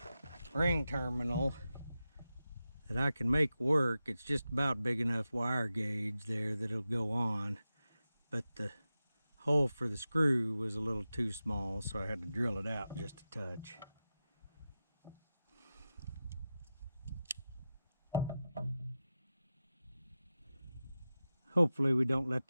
ring terminal that I can make work. It's just about big enough wire gauge there that it'll go on, but the hole for the screw was a little too small, so I had to drill it out just a touch. Hopefully we don't let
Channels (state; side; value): inverted; both; correlation -0.92